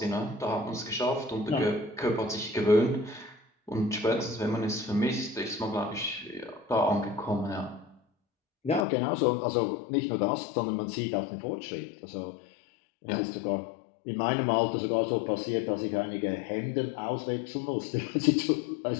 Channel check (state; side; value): drops out; right; at 8.8 s